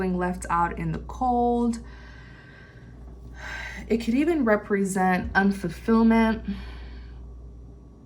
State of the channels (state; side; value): identical; both; correlation 1.00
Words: left out in the cold. It could even represent unfulfillment.